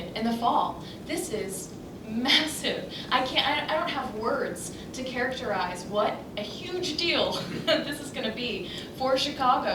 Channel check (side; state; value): both; identical; correlation 1.00